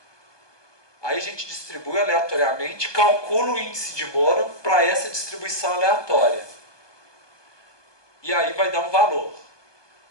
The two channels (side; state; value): right; late; 1.2 ms